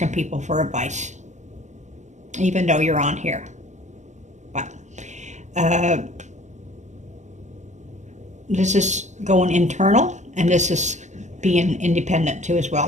people for advice, even though you're on here. But this is going internal, and this is being independent too as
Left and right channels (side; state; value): left; late; 0.34 ms